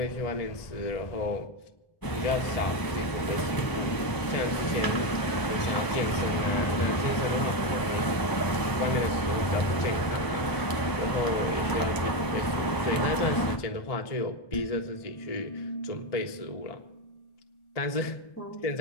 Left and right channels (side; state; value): right; late; 1.0 ms